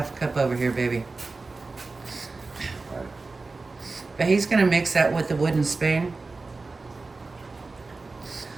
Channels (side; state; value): left; quieter; 3.7 dB